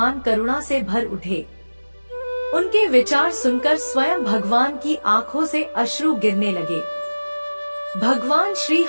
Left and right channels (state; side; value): inverted; both; correlation -1.00